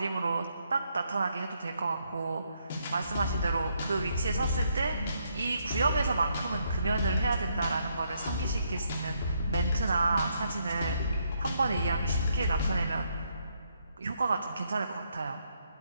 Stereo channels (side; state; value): both; inverted; correlation -0.75